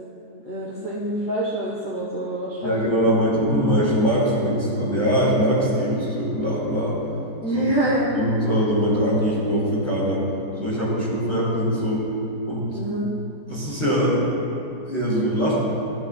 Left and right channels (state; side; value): late; right; 14 ms